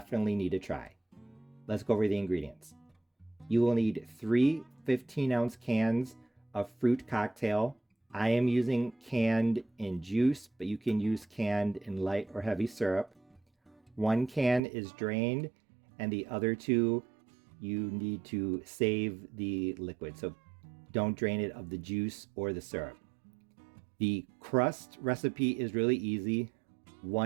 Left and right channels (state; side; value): drops out; left; at 14.6 s